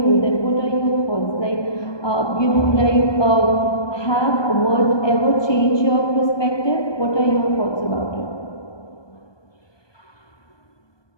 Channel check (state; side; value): late; right; 1.2 ms